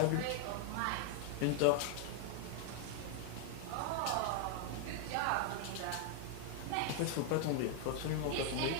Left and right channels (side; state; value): both; different; correlation 0.00